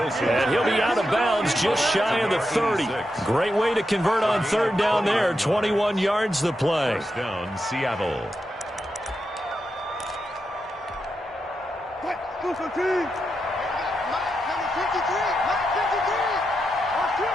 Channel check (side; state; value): both; normal; correlation 0.86